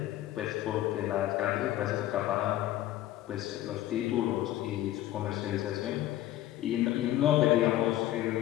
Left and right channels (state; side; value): quieter; right; 14.3 dB